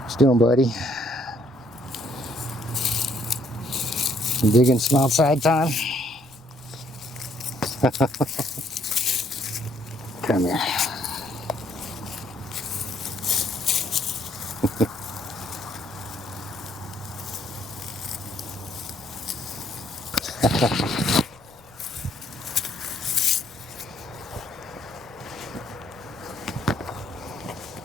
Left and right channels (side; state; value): left; noise; rumble, 28 dB below the sound